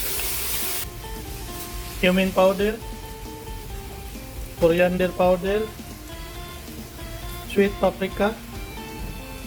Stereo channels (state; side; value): identical; both; correlation 1.00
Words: cumin powder, coriander powder, sweet paprika,